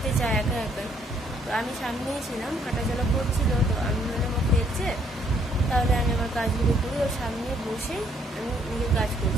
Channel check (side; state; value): both; normal; correlation 0.67